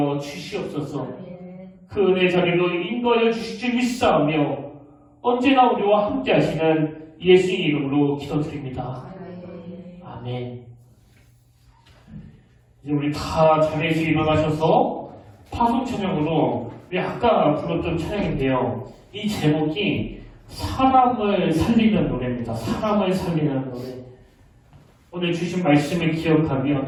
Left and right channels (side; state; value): both; identical; correlation 1.00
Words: 주시옵소서. 그 은혜 자리로 인도하여 주실 줄 믿사오며 언제나 우리와 함께 하시는 예수의 이름으로 기도드립니다. 아멘. 이제 우리 다 자리에서 일어나셔서 파송 찬양으로 우리 아까 불렀던 찬양인데요. 이 제목이 사람을 살리는 노래입니다. 사람을 살리는 노래. 오늘 주신 말씀을 기억하며